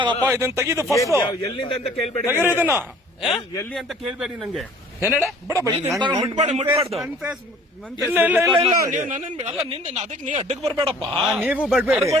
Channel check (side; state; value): both; normal; correlation 0.52